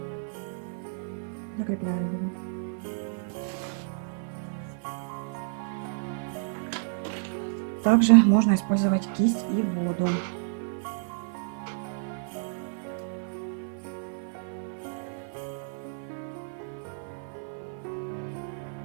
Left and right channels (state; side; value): silent; left; 58 dB below the other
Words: закрепляю его. Также можно использовать кисть и воду.